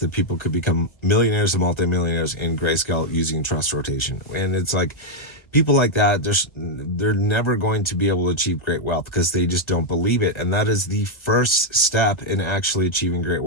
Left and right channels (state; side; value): late; right; 1.1 ms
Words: people could become millionaires and multimillionaires in grayscale using trust rotation. And it's like, people like that, they're never going to be able to achieve great wealth because they just don't believe it. And that is the first step in actually achieving great